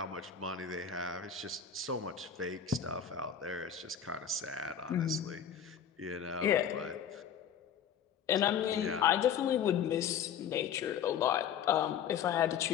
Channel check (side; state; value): right; quieter; 8.3 dB